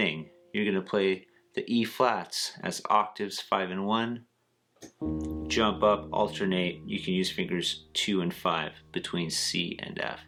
You're going to play the E flats as octaves 5 and 1. Jump up, alternate, you can use fingers 2 and 5 between C and F.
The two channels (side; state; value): both; identical; correlation 1.00